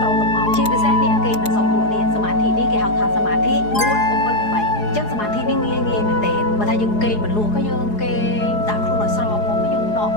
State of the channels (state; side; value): late; right; 4.8 ms